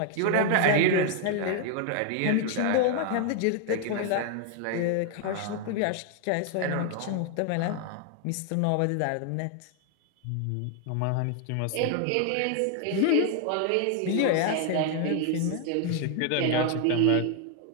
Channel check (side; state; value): both; different; correlation 0.00